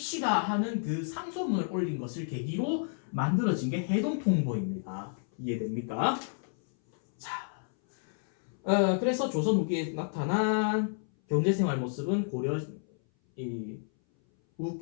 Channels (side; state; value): right; silent; 57 dB below the other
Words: 하는 그 상소문을 올린 것을 계기로 만들어진 게 해동통보입니다. 이해됩니까? 자, 그래서 조선 후기에 나타난 경제생활 모습은 고려